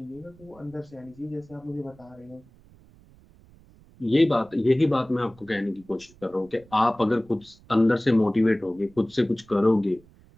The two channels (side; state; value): right; noise; rumble, 26 dB below the sound